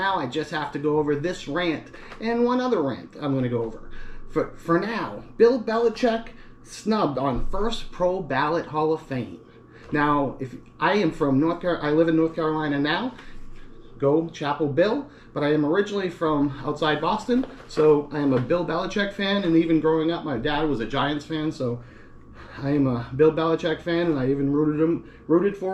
I just have to go over this rant and one other rant I'm going to go over. For now, Bill Belichick snubbed on first pro ballot Hall of Fame. Now, if I am from North Carolina, I live in North Carolina now. Go Chapel Bill, but I am originally from outside Boston, so I am a Bill Belichick fan, and even growing up, my dad was a Giants fan, so I am a Bill Belichick fan, and I even rooted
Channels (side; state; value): both; identical; correlation 1.00